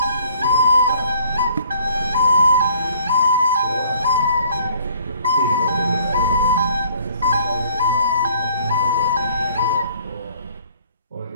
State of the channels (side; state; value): both; inverted; correlation -0.58